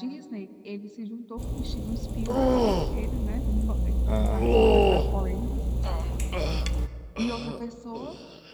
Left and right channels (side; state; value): both; identical; correlation 1.00